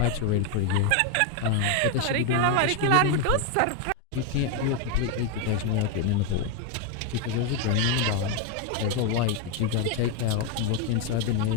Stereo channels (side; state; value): both; different; correlation 0.01